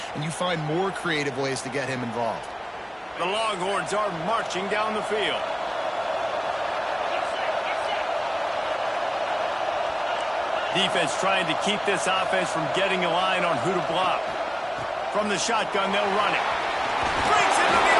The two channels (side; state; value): both; identical; correlation 1.00